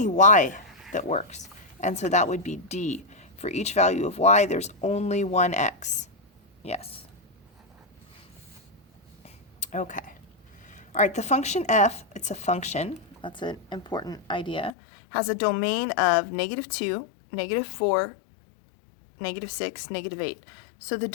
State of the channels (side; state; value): right; drops out; at 14.7 s